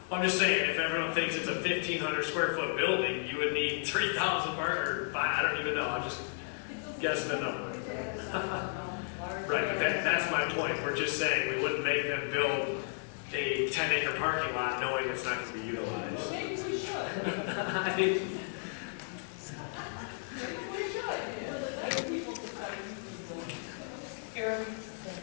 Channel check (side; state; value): right; silent; 55 dB below the other